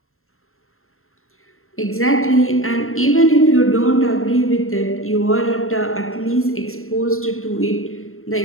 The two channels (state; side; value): late; right; 0.62 ms